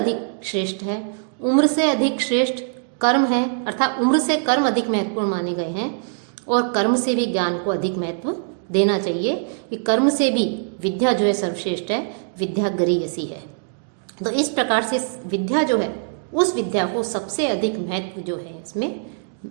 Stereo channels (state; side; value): silent; left; digital silence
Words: श्रेष्ठ है, उम्र से अधिक श्रेष्ठ कर्म है, अर्थात उम्र से कर्म अधिक महत्वपूर्ण माने गए हैं। और कर्म से भी ज्ञान को अधिक महत्व देना चाहिए कि कर्म से भी विद्या जो है सर्वश्रेष्ठ है, विद्या गरीयसी है। तो इस प्रकार से विद्या जो है उस विद्या को सबसे अधिक महत्व जो है इसमें